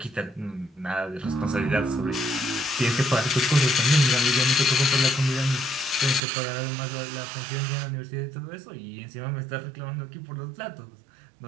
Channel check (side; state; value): left; drops out; at 6.2 s